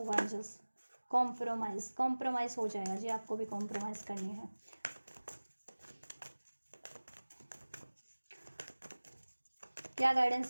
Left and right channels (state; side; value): inverted; both; correlation -1.00